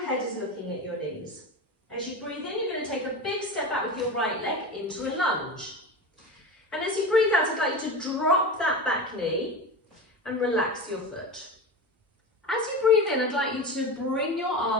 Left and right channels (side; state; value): both; normal; correlation 0.26